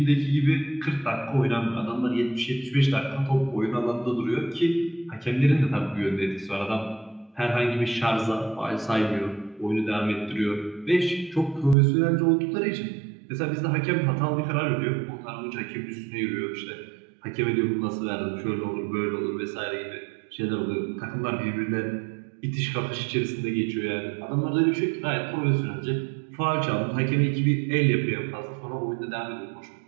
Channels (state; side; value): drops out; left; at 11.8 s